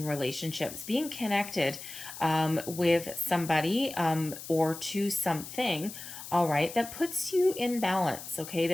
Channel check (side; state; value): left; noise; hiss, 12 dB below the sound